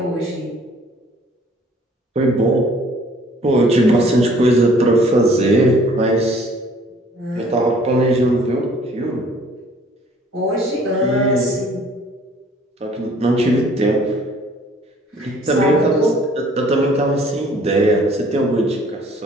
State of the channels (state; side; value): normal; both; correlation 0.56